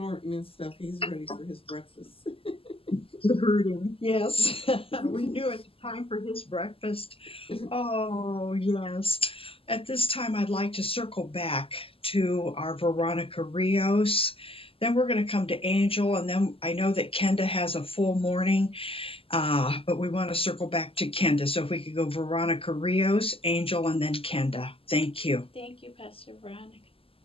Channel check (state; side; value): late; right; 0.27 ms